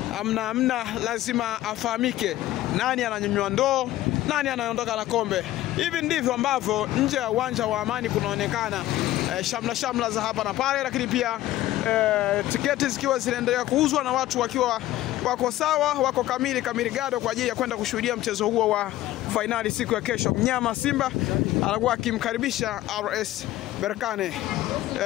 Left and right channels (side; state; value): right; quieter; 15.0 dB